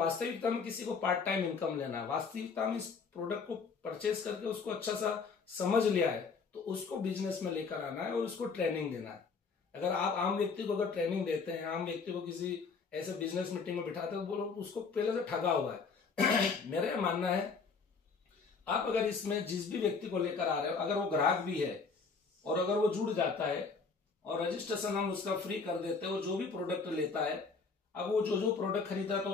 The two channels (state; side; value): quieter; right; 4.9 dB